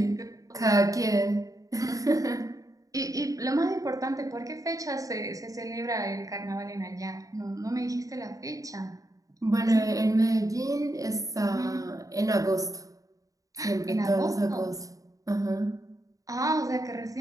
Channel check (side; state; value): left; late; 0.17 ms